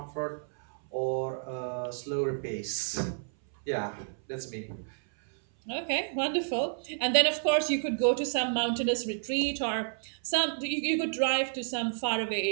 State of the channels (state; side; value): silent; left; 58 dB below the other